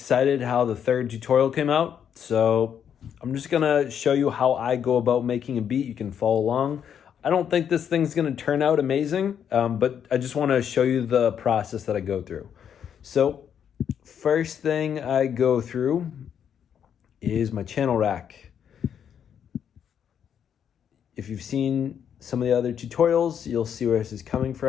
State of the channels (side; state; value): right; quieter; 8.5 dB